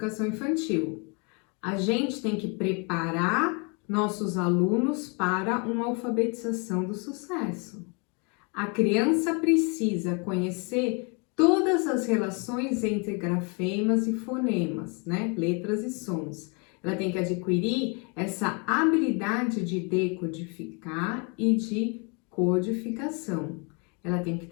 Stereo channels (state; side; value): quieter; right; 33.7 dB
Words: infantil. A gente tem que preparar nossos alunos para uma alfabetização do sucesso. A criança precisa conhecer todas as relações entre grafemas e fonemas, né? Letras e sons. Ela tem que adquirir essa habilidade de decodificar e de codificação. Ela tem que